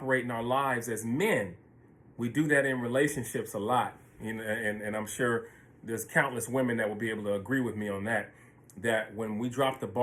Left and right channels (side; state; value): both; identical; correlation 1.00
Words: in our lives as men. We do that in relationships a lot. And I'm sure there's countless women that will be able to agree with me on that. That when we drop the